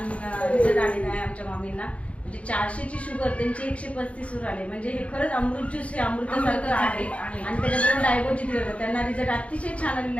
रिझल्ट आलेला आहे आमच्या मामींना. म्हणजे 400ची शुगर त्यांची 135 वर आली. म्हणजे हे खरंच अमृत ज्यूस हे अमृतासारखं आहे. आणि त्याच्याबरोबर डायगोजी दिलं होतं. त्यांना रिझल्ट अतिशय छान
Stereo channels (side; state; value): right; late; 0.063 ms